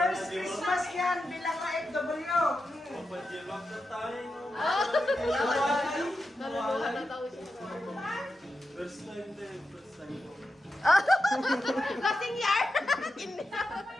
Christmas yan bilang ka FW. Naluluhan na tao siya. First time din, first time. Lasing yar!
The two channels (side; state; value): both; normal; correlation 0.89